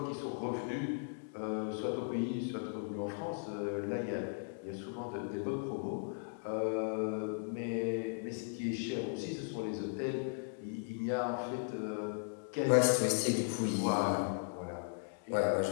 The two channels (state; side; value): silent; right; digital silence